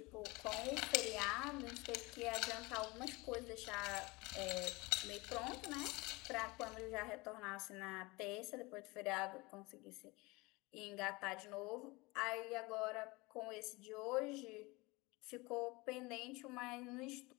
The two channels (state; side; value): quieter; right; 24.0 dB